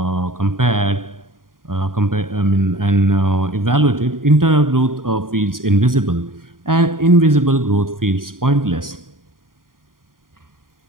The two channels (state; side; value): late; left; 0.91 ms